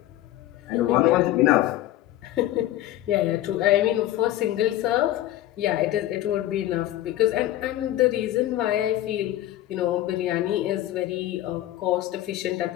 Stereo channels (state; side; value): quieter; right; 14.1 dB